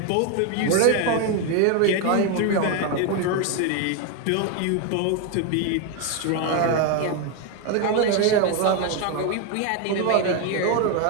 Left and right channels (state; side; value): different; both; correlation 0.01